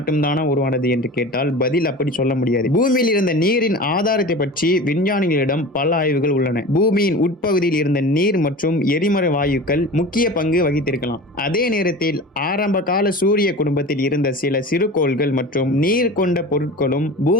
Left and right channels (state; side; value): normal; both; correlation 0.34